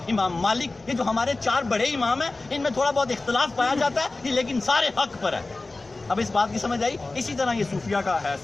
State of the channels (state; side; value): quieter; right; 3.3 dB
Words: امام مالک، یہ جو ہمارے 4 بڑے امام ہیں ان میں تھوڑا بہت اختلاف پایا جاتا ہے، لیکن سارے حق پر ہے. اب اس بات کی سمجھ آئی؟ اسی طرح یہ صوفیہ کا ہے